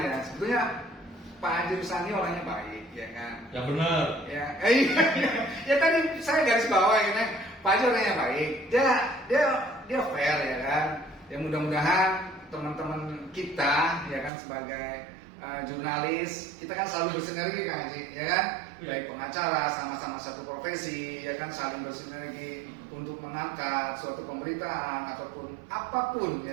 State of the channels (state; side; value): drops out; left; at 14.3 s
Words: ya. Sebetulnya Pak Haji Rusandi orangnya baik ya kan. Yang benar. Ya, ya tadi saya garis bawah ya kan. Pak Haji orangnya baik. Dia fair ya kan. Ya mudah-mudahan teman-teman kita ya kan sebagai jurnalis, kita kan selalu bersinergi kan Haji, ya kan? Baik pengacara, sama-sama satu profesi, ya kan saling bersinergi untuk mengangkat suatu pemberitaan ataupun apapun